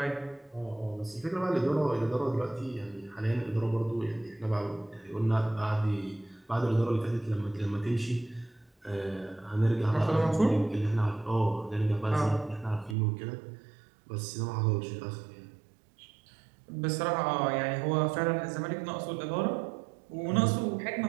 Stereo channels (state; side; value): drops out; left; at 13.0 s